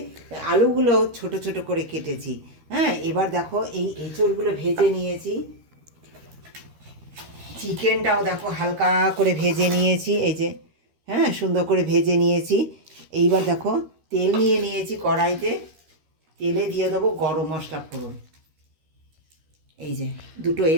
আলুগুলো ছোট ছোট করে কেটেছি। হ্যাঁ, এবার দেখো এই এঁচড়গুলো ভেজে নিয়েছি। চিকেনটাও দেখো হালকা করে ভেজে নিয়েছি, এই যে, হ্যাঁ, সুন্দর করে ভেজে নিয়েছি। এইবার দেখো তেল নিয়ে নিয়েছি কড়াইতে, তেলে দিয়ে দেবো গরম মশলা ফোড়ন। এই যে 2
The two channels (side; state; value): left; late; 13 ms